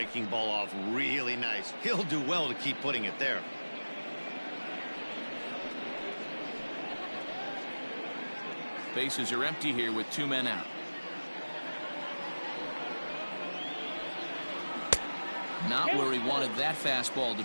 ball off really nice. He'll do well to keep putting it there. Bases are empty here with 2 men out. Not where he wanted that fastball to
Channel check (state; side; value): inverted; both; correlation -1.00